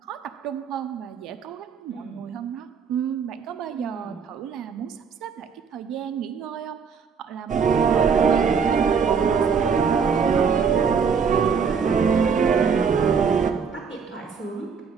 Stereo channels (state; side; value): quieter; left; 6.1 dB